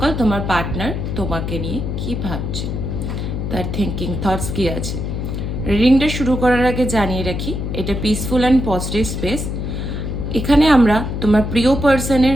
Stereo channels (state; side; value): noise; left; hum, 3 dB below the sound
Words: তোমার পার্টনার তোমাকে নিয়ে কি ভাবছে, তার থিঙ্কিং থটস কি আছে। রিডিংটা শুরু করার আগে জানিয়ে রাখি, এটা পিসফুল অ্যান্ড পজিটিভ স্পেস। এখানে আমরা তোমার প্রিয় পার্সনের